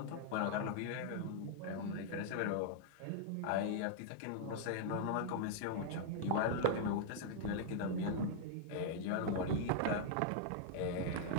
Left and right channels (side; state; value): both; different; correlation -0.01